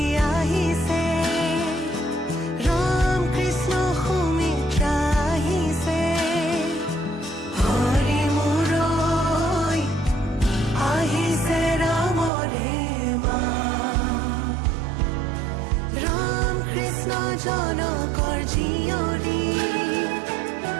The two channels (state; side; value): drops out; left; at 12.3 s